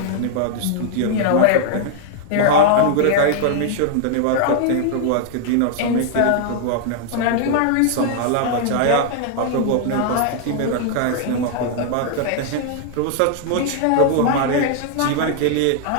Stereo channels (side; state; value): both; different; correlation -0.01